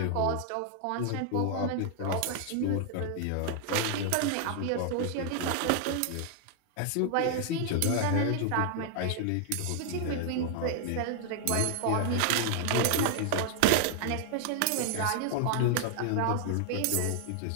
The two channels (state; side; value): different; both; correlation 0.00